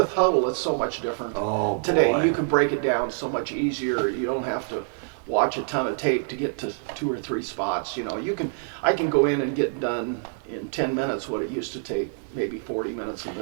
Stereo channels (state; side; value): silent; left; digital silence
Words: Huddle, it's so much different. Oh, today, boy. you can break it down so much easier. You don't have to watch a ton of tape to get to 2 or 3 spots. I can go in and get done in 10 minutes what it used to take maybe 40 minutes